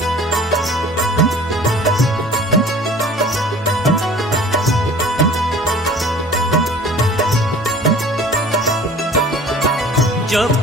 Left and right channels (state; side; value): normal; both; correlation 0.46